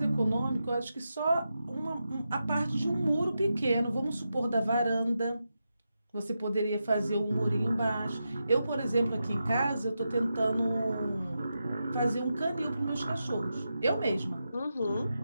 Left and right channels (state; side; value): inverted; both; correlation -0.88